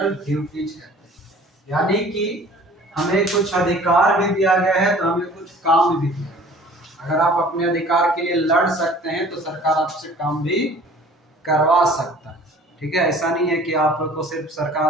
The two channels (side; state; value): both; normal; correlation 0.49